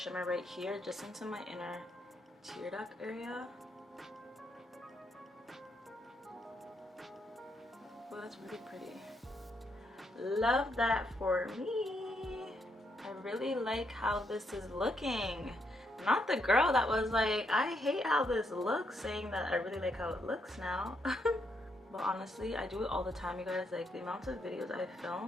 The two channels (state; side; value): normal; both; correlation 0.76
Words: right here just into my inner tear duct area. Oh, that's really pretty. Love that for me. I really like how this is looking. Not the girl that was like, I hate how this looks, saying that I really like how it looks now. But honestly, I do it all the time, you guys. Like, the amount of videos I